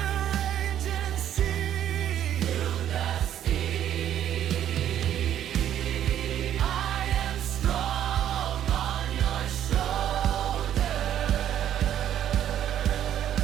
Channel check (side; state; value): left; quieter; 10.7 dB